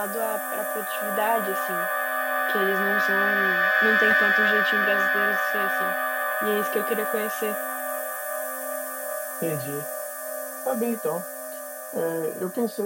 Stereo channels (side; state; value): both; identical; correlation 1.00